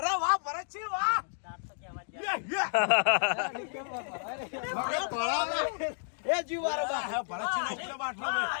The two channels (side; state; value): right; silent; digital silence